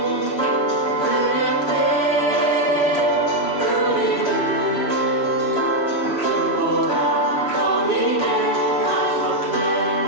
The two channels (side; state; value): right; late; 3.1 ms